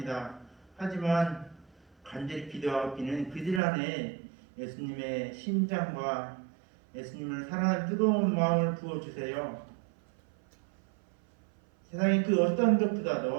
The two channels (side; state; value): left; drops out; at 3.6 s